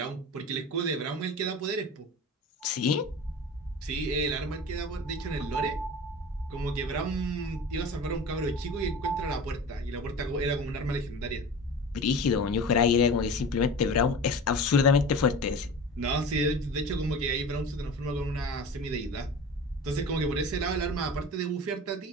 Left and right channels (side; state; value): both; normal; correlation 0.34